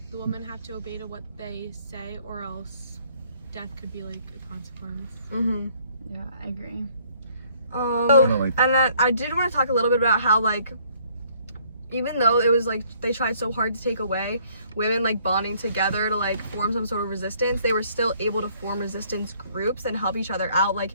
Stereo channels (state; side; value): inverted; both; correlation -0.63